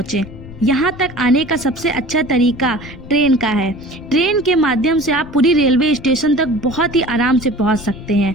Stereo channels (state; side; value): noise; left; rumble, 16 dB below the sound